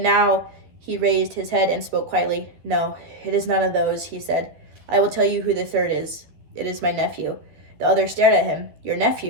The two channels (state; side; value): late; left; 12 ms